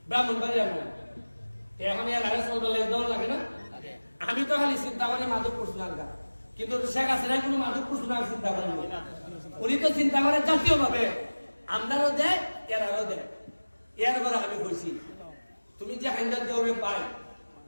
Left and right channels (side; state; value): both; inverted; correlation -1.00